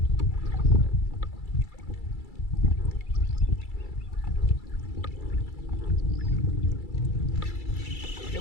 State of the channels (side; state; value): right; late; 2.3 ms